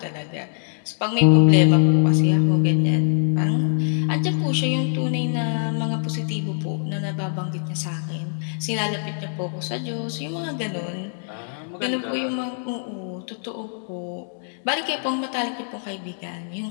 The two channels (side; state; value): right; silent; digital silence